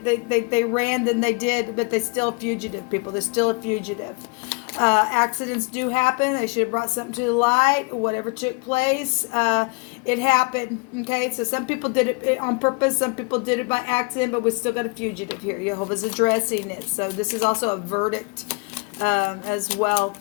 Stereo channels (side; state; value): right; quieter; 30.8 dB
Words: ran, then they did, but they're still fugitive people. They're still a fugitive. Accidents do happen. They should have brought something to the light. Whatever took place, it happened. Okay, so some people did it on purpose. Some people did it by accident, but we still got a fugitive here. Jehovah's addressing it. So this is also a verdict as well.